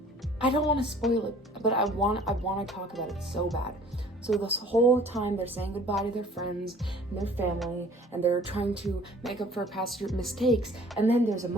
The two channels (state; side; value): normal; both; correlation 0.52